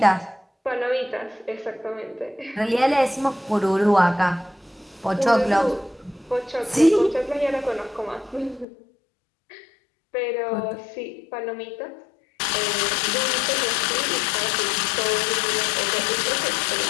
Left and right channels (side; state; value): right; drops out; at 8.7 s